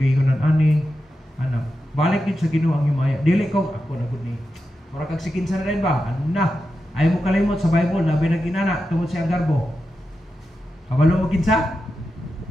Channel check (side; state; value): both; normal; correlation 0.90